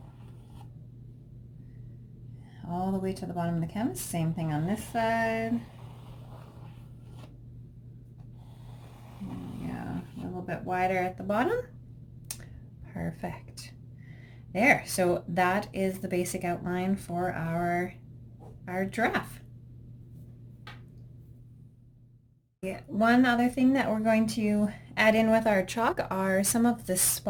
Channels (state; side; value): identical; both; correlation 1.00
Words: all the way to the bottom of the canvas. Same thing on this side. Yeah, a little bit wider at the bottom. Perfect. There, so that is the basic outline for our giraffe. One other thing that we're going to add in with our chalk are some of the